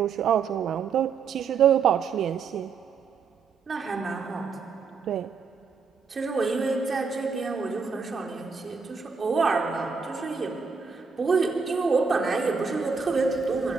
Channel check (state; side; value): quieter; left; 5.4 dB